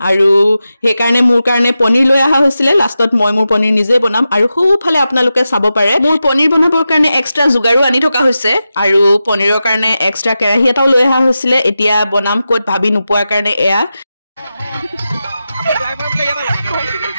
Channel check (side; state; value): both; inverted; correlation -0.91